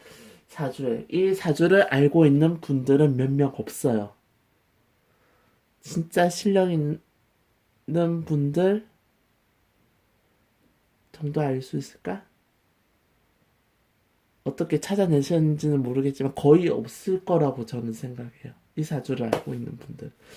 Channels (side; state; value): both; identical; correlation 1.00